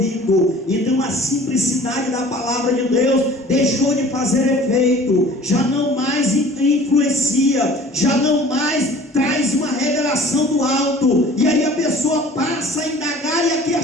Então a simplicidade da palavra de Deus deixou de fazer efeito, já não mais influencia, já não mais traz uma revelação do alto, e aí a pessoa passa a indagar e a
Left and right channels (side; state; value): both; normal; correlation 0.47